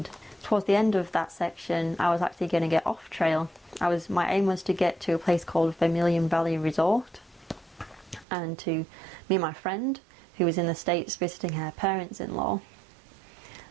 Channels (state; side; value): drops out; left; at 8.2 s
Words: Towards the end of that section, I was actually going to get off trail. My aim was to get to a place called Vermilion Valley Resort, and to meet my friend who was in the States visiting her parents-in-law.